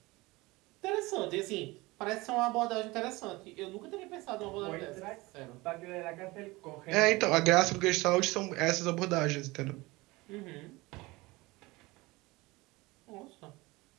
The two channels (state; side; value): quieter; left; 22.0 dB